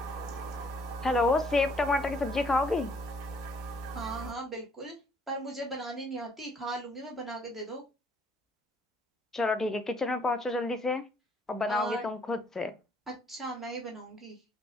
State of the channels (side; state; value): both; normal; correlation 0.64